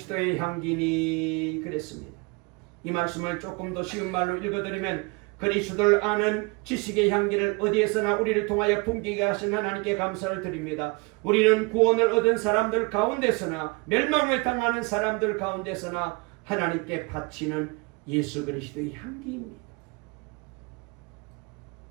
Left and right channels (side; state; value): left; quieter; 28.9 dB